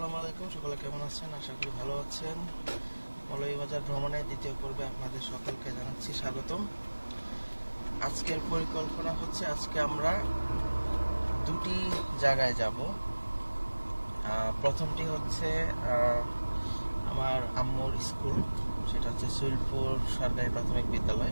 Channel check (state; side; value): inverted; both; correlation -1.00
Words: আলাইকুম। সকলে কেমন আছেন? আশা করি ভালো আছেন। মৌলভীবাজার ভ্রমণের দ্বিতীয় পর্বে আপনাদের সকলকে জানাচ্ছি স্বাগতম। আজকের পরিকল্পনা হচ্ছে আজকে আমরা দুটি জায়গায় যাব। প্রথমটি হচ্ছে আমার আম্মুর স্কুল, সেটা হচ্ছে সুইলপুর সরকারি প্রাথমিক